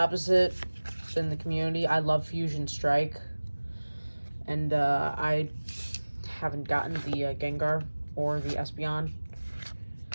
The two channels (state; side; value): inverted; both; correlation -1.00